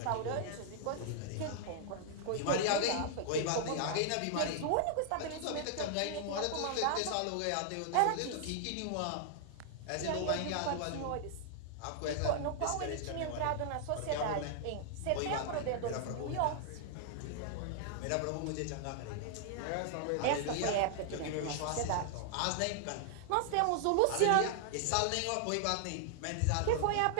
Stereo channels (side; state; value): both; different; correlation -0.01